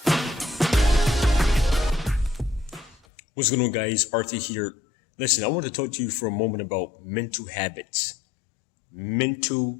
What's going on, guys? Arthur here. Listen, I want to talk to you for a moment about mental habits.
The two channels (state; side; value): drops out; right; at 3.0 s